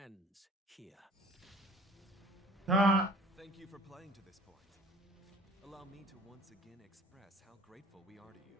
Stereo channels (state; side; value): normal; both; correlation 0.50